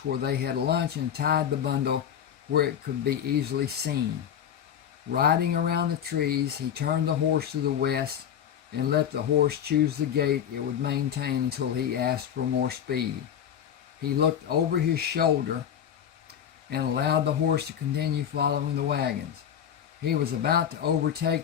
where they had lunch, and tied the bundle where it could be easily seen. Riding around the trees, he turned the horse to the west and let the horse choose the gait it would maintain until he asked for more speed. He looked over his shoulder and allowed the horse to continue following the wagons. He was about to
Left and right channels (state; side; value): quieter; right; 9.1 dB